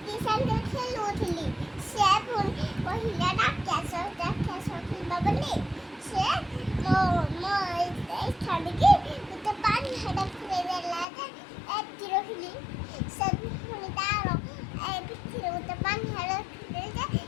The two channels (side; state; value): right; drops out; at 11.1 s